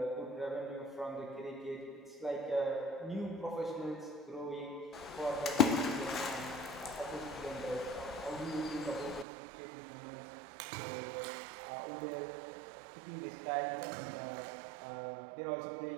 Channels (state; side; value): drops out; left; at 9.2 s